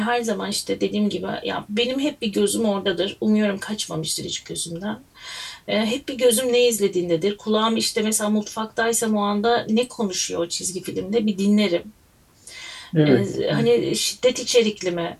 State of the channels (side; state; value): both; identical; correlation 1.00